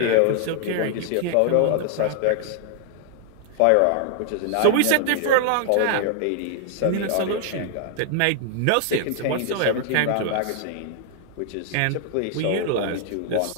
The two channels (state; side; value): different; both; correlation 0.00